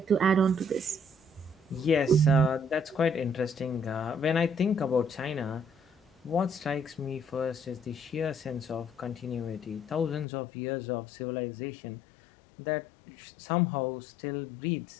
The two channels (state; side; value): drops out; right; at 10.2 s